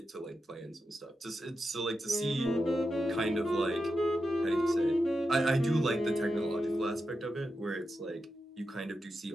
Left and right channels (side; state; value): both; normal; correlation 0.88